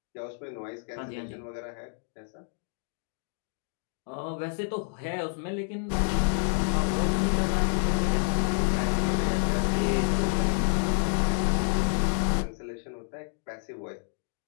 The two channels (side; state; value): right; silent; 59 dB below the other